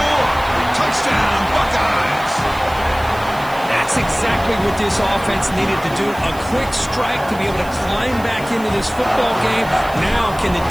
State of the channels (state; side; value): noise; right; hiss, 20 dB below the sound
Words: Touchdown, Buckeyes. That's exactly what this offense needed to do. A quick strike to be able to climb back into this football game. Now can the